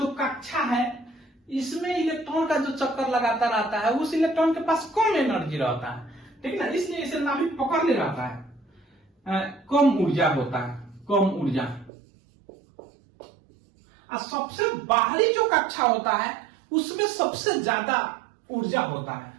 कक्षा है इसमें इलेक्ट्रॉन का जो चक्कर लगाता रहता है उस इलेक्ट्रॉन के पास कम एनर्जी रहता है, ठीक ना, इसलिए इसे नाभि पकड़ ले रहता है, कम ऊर्जा होता है, कम ऊर्जा। और सबसे बाहरी जो कक्षा होता है उसमें सबसे ज्यादा ऊर्जा होता है।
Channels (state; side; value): drops out; left; at 11.9 s